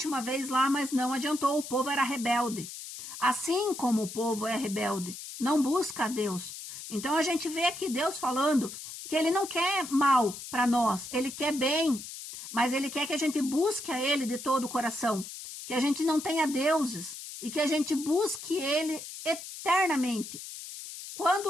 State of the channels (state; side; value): noise; left; hiss, 11 dB below the sound